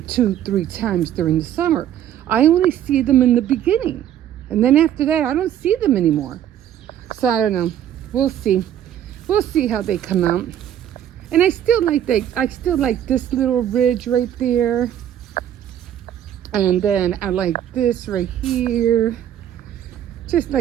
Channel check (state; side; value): quieter; left; 10.7 dB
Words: 2-3 times during the summer. I only see them in the beginning. And then after that, I don't see them anymore. So I don't know. We'll see. We'll see how they come out. And I still like this little ridge right there. And then I like this right here. Just